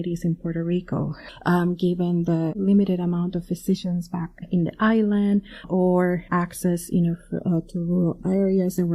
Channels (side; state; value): both; identical; correlation 1.00